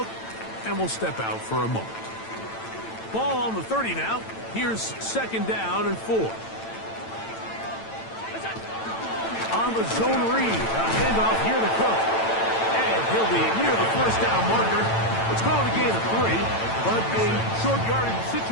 and will step out for a moment. Ball on the 30 now. Here's 2nd down and 4. On the zone read, a handoff here to Cook. And he'll be near the 1st down marker. It's called a gain of 3, but a short yardage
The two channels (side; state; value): right; late; 9.0 ms